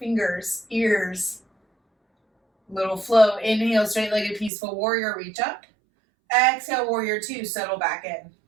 ears. Little flow. Inhale, straight-legged peaceful warrior, reach up. Exhale, warrior two, settle back in.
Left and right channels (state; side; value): drops out; left; at 4.5 s